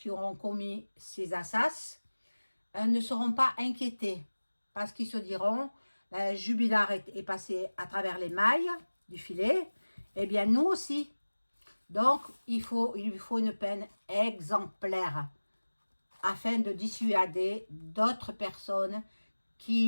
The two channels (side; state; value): both; inverted; correlation -1.00